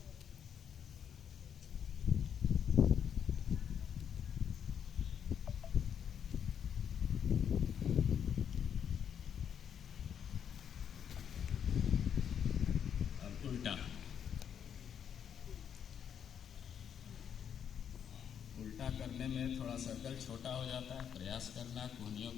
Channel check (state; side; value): quieter; right; 8.3 dB